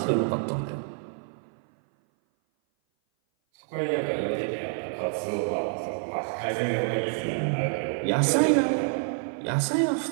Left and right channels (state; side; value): silent; left; 57 dB below the other